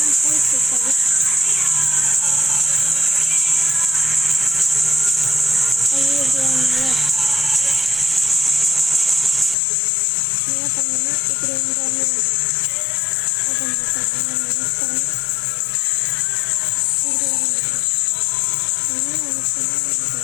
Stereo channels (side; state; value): right; drops out; at 9.6 s